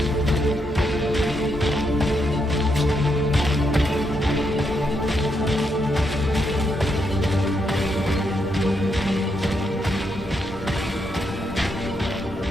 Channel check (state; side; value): normal; both; correlation 0.80